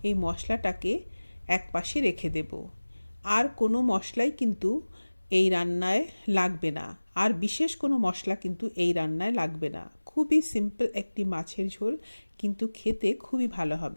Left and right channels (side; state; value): both; inverted; correlation -1.00